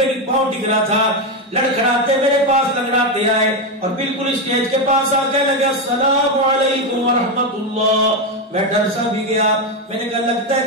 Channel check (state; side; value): normal; both; correlation 0.09